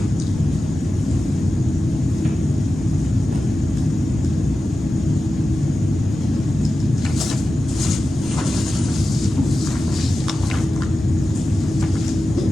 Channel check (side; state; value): both; normal; correlation 0.93